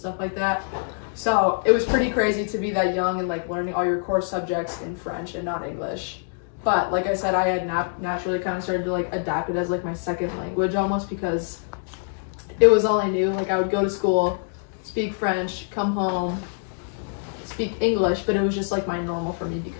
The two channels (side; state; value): right; silent; digital silence